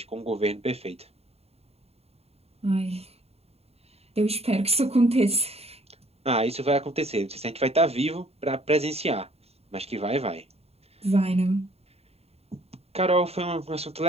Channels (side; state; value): left; late; 0.30 ms